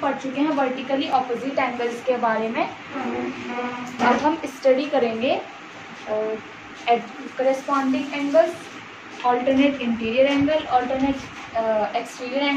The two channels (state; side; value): identical; both; correlation 1.00